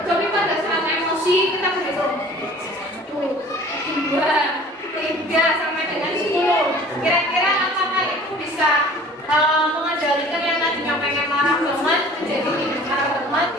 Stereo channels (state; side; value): normal; both; correlation 0.48